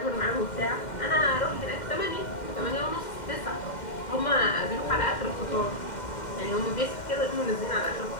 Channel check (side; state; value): right; late; 2.1 ms